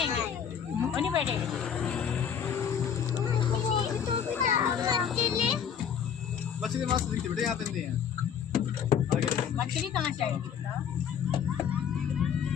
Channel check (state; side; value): quieter; right; 8.0 dB